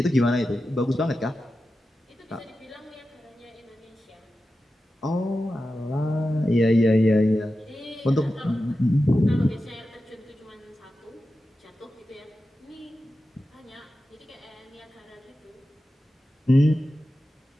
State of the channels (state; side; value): normal; both; correlation 0.92